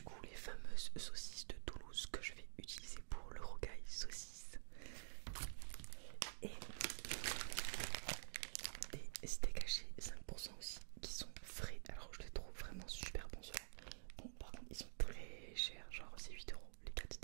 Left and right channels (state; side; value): silent; left; digital silence